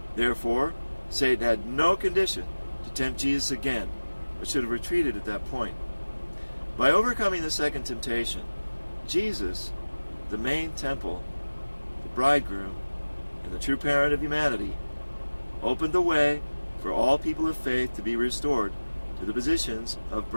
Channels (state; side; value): inverted; both; correlation -1.00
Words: Therefore, Satan had no condition to tempt Jesus again, but should have retreated at that point. By overcoming the second temptation, Jesus, the main temple, the bridegroom, and the true parent of humanity, opened the way for all people of faith to be restored to the positions of